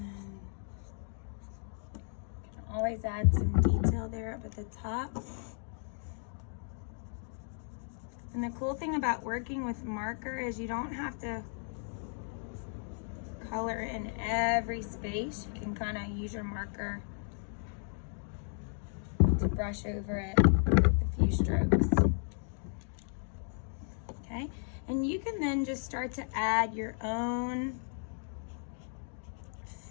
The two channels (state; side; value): silent; right; 55 dB below the other